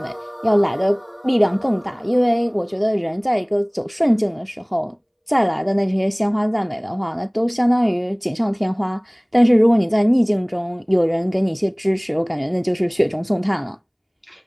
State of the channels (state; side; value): identical; both; correlation 1.00